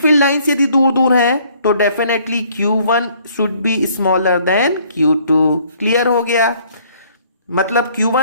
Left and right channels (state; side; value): inverted; both; correlation -0.61